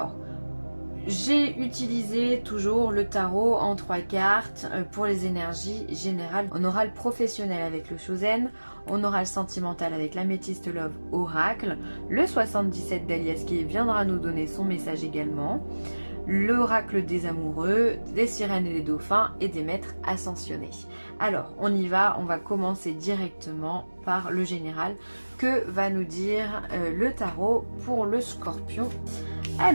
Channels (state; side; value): inverted; both; correlation -1.00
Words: j'ai utilisé toujours le tarot en 3 cartes pour les énergies générales. On aura le professionnel avec le Chosen, on aura le sentimental avec l'améthyste Love Oracle, le 77 d'Alias qui viendra nous donner son message également, l'oracle des amoureux, des sirènes et des dauphins et des maîtres ascensionnés. Alors, on y va, on va commencer directement par le général. Que va nous dire le tarot pour le scorpion?